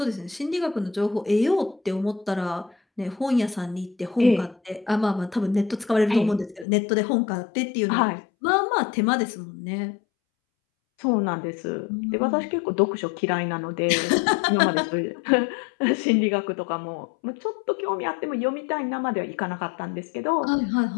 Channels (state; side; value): drops out; right; at 6.7 s